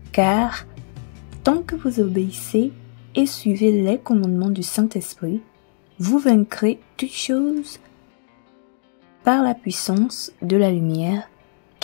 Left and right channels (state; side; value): silent; right; digital silence